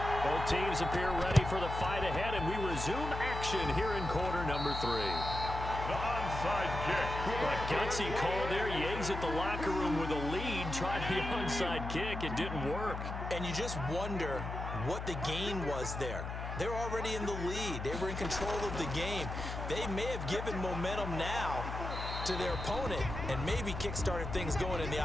Both teams appear ready for the fight ahead, and we resume action here in quarter number 3. The onside kick. A gutsy call there. He exits the locker room with a lead. Tried the onside kick. It didn't work. And you just wonder what the gain was there. They're already in the lead. They were in control of the game. They may have given momentum now to their opponent and maybe kick-started things going in the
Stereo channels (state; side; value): noise; left; hum, 6 dB below the sound